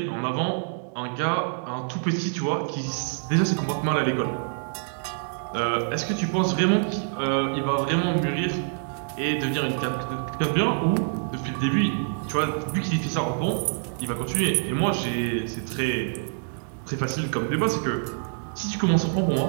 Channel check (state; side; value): silent; left; digital silence